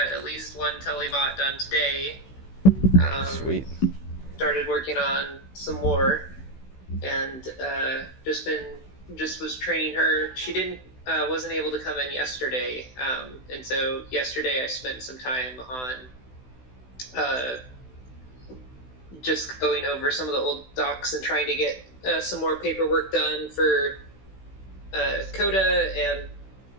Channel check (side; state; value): right; late; 16 ms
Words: at least one telebot done today. Sweet. Started working on some more, and just was training her. She wasn't able to come in yesterday, and so yesterday I spent some time on just going over some of the old docs and trying to get some more paperwork done for Coda, and